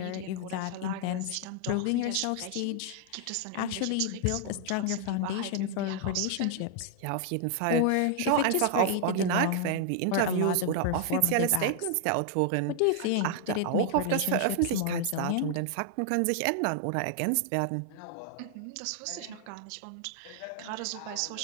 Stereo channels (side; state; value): both; different; correlation 0.00